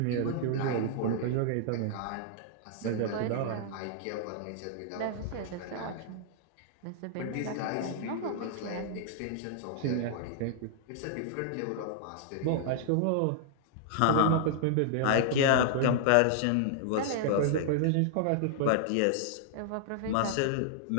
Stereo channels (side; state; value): both; different; correlation -0.01